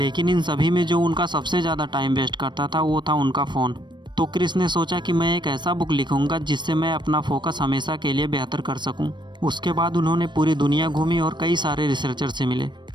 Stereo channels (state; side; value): late; left; 0.22 ms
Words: इन सभी में जो उनका सबसे ज़्यादा टाइम वेस्ट करता था वो था उनका फ़ोन। तो क्रिस ने सोचा कि मैं एक ऐसा बुक लिखूंगा जिससे मैं अपना फोकस हमेशा के लिए बेहतर कर सकूं। उसके बाद उन्होंने पूरी दुनिया घूमी और कई सारे रिसर्चर से मिले